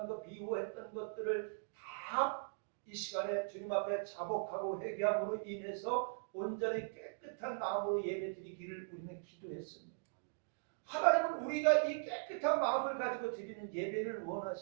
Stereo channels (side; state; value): left; silent; digital silence